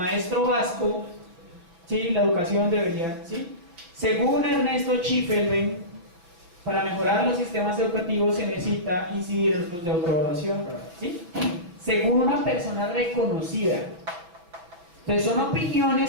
vasco, ¿sí? La educación debería, ¿sí? Según Ernesto Schiffelbein, para mejorar los sistemas educativos se necesita incidir en los de autoevaluación, ¿sí? Según una persona reconocida. Entonces son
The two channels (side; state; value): left; late; 5.9 ms